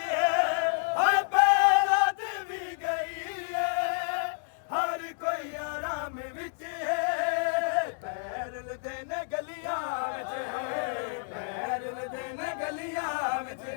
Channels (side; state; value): right; silent; digital silence